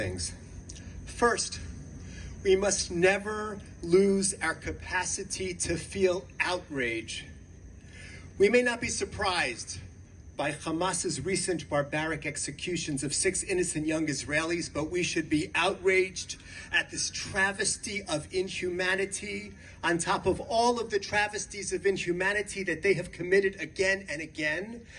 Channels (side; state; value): both; identical; correlation 1.00